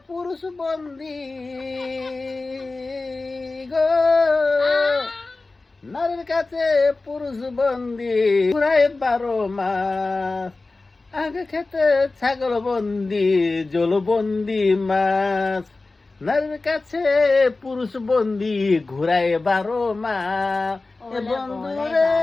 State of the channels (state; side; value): quieter; right; 3.4 dB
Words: পুরুষ বন্দি গো, নারীর কাছে পুরুষ বন্দি ঘুরায় 12 মাস, আগে খেতে ছাগল বন্দি জলবন্দি মাছ, নারীর কাছে পুরুষ বন্দি ঘুরায় 12 মাস। এ বন্ধু রে